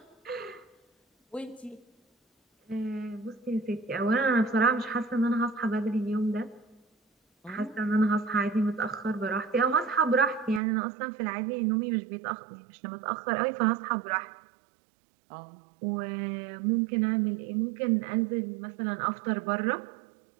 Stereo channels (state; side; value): drops out; left; at 10.6 s